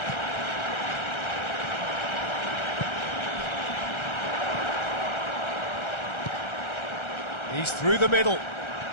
He's through the middle.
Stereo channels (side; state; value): right; late; 1.3 ms